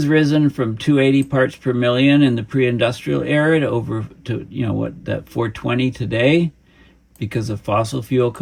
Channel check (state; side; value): identical; both; correlation 1.00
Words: risen from 280 parts per million in the pre-industrial era to 420 today because of fossil fuel